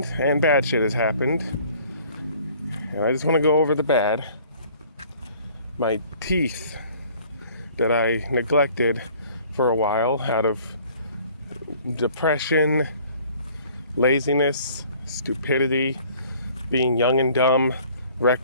and bad shit has happened. And I just want to go over the bad. My teeth that I neglected for a while out of depression, laziness, stupidity, being young and dumb,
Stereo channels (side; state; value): both; inverted; correlation -0.54